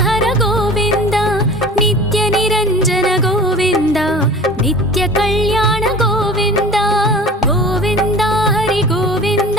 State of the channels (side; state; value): both; normal; correlation 0.40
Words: గోవింద నిత్య నిరంజన గోవింద నిత్య కళ్యాణ గోవింద గోవింద హరి గోవింద